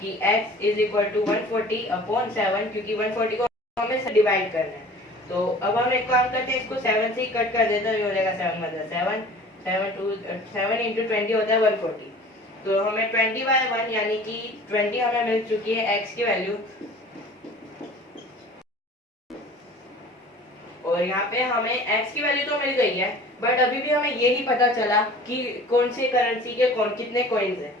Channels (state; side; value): normal; both; correlation 0.45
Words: कि x is equal to 140 upon 7, क्योंकि 140 को हमें डिवाइड करना है। तो अब हम एक काम करते हैं, इसको 7 से ही कट कर देते हैं, ये हो जाएगा 7 मतलब 7 इंटू 20 होता है 140। तो हमें 20/1 यानी कि 20 हमें मिल चुकी है x की वैल्यू। और यहाँ पे हमें x की वैल्यू तो मिल गई है, बट अभी भी हमें ये नहीं पता चला कि कौन सी करेंसी के कितने कॉइन्स हैं।